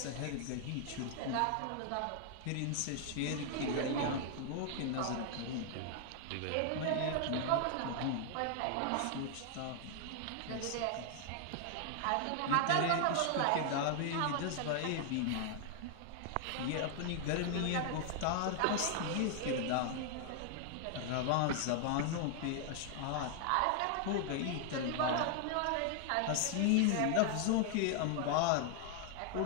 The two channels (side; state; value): both; different; correlation 0.00